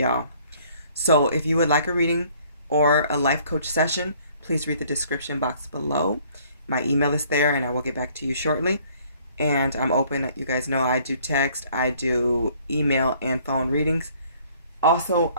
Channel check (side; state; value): both; inverted; correlation -0.59